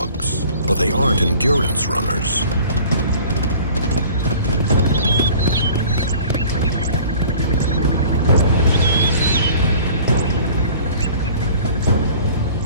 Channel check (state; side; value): inverted; both; correlation -0.47